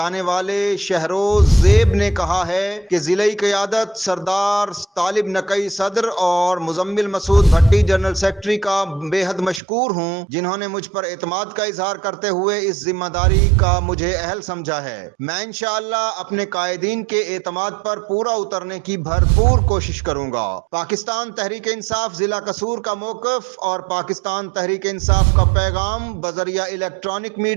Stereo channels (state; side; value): drops out; left; at 9.6 s